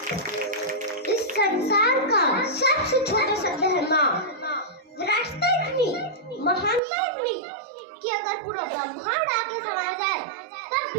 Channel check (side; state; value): left; drops out; at 6.8 s